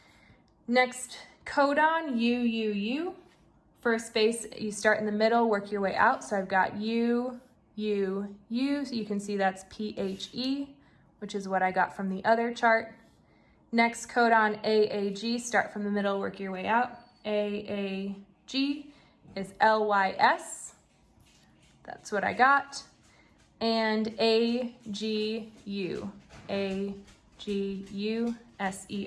Next codon, UUU. First base, you start in the middle, work your way out. So I've got U, U, U. So you can see that's PHE, which is what I got from the other chart. Next codon AAG, start from the middle, work your way out. AAG. is LYS. That's what I got. And AGU, AGUSER.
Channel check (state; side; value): identical; both; correlation 1.00